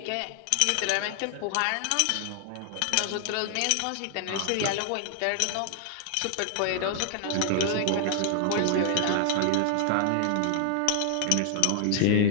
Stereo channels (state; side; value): different; both; correlation -0.01